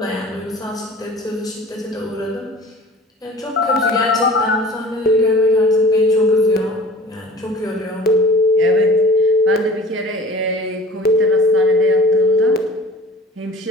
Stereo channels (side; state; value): both; normal; correlation 0.44